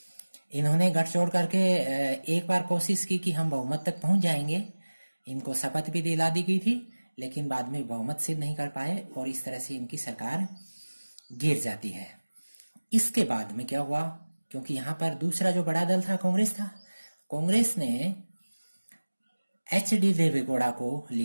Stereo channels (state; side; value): inverted; both; correlation -1.00